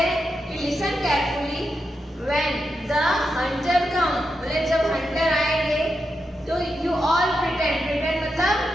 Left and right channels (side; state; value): both; normal; correlation 0.86